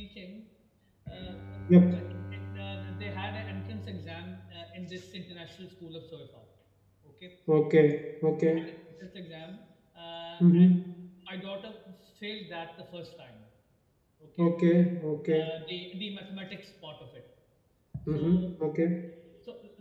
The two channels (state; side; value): identical; both; correlation 1.00